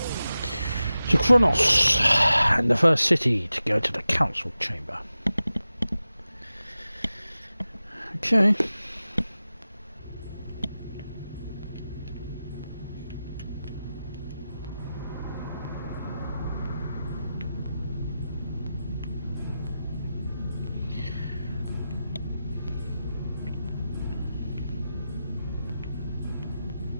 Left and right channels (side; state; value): both; inverted; correlation -0.93